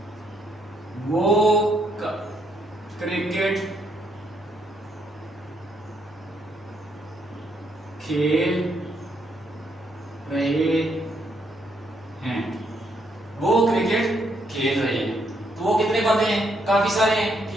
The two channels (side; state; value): both; normal; correlation 0.74